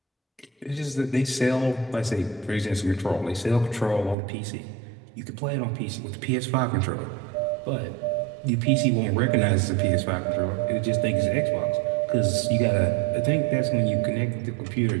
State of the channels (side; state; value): left; drops out; at 4.2 s